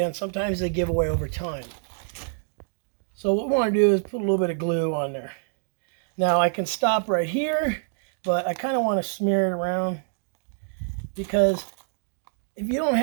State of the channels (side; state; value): left; silent; digital silence